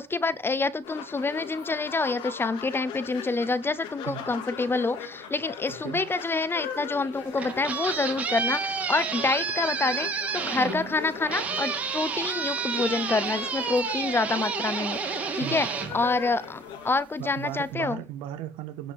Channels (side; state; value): both; normal; correlation 0.55